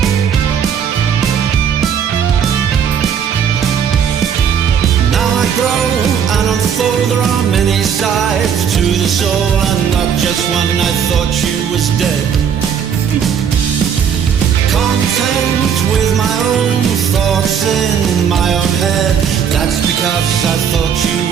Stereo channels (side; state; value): left; quieter; 7.8 dB